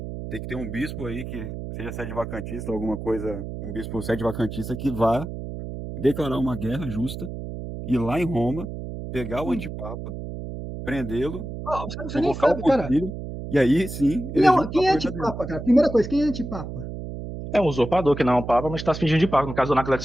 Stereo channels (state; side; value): noise; right; hum, 8 dB below the sound